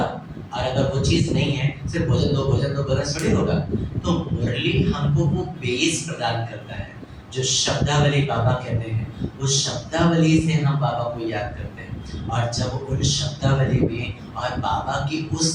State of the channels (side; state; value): both; identical; correlation 1.00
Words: और अगर वो चीज़ नहीं है, सिर्फ भोजन दो बोलना थोड़ी होगा। तो मुरली हमको वो बेस प्रदान करता है, जो शब्दावली बाबा कहते हैं, उस शब्दावली से हम बाबा को याद करते हैं। और जब उन शब्दावली में और बाबा की